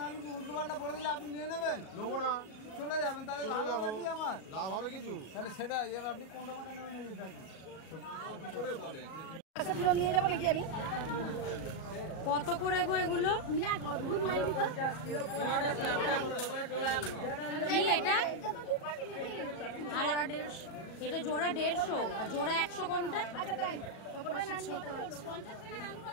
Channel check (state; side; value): late; right; 37 ms